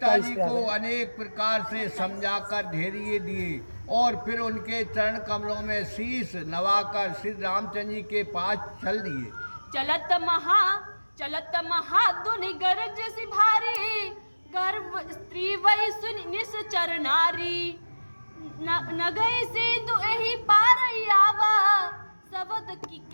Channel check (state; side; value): inverted; both; correlation -1.00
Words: जी को अनेक प्रकार से समझाकर धैर्य दिए और फिर उनके चरण कमलों में शीश नवाकर श्री रामचंद्र जी के पास चल दिए। चलत महाधुनि गरज सी भारी, गर्भ स्त्री वही सुन निश्चर नारी। न गई से दुहि पार आवा, सबद की